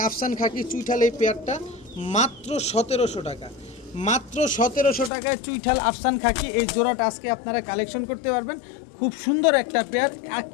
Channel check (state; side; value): drops out; right; at 5.1 s